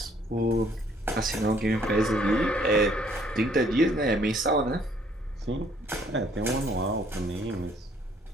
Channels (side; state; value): both; normal; correlation 0.63